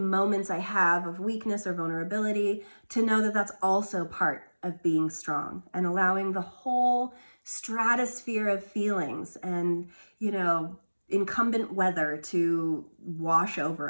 I have of weakness or vulnerability, to know that that's also part of being strong and allowing the whole stratosphere of feelings and, you know, incumbent weather to wash over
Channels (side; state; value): both; inverted; correlation -1.00